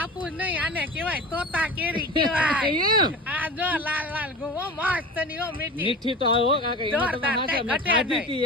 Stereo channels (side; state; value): both; normal; correlation 0.33